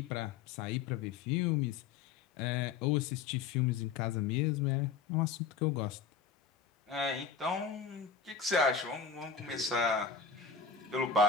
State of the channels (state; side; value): quieter; right; 5.8 dB